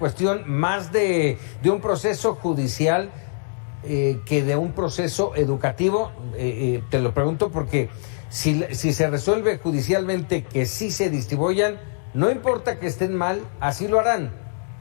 más de un proceso judicial que de un proceso educativo. Te lo pregunto porque si se resuelve judicialmente que sí se distribuyan, no importa que estén mal, así lo harán.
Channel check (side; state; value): right; silent; digital silence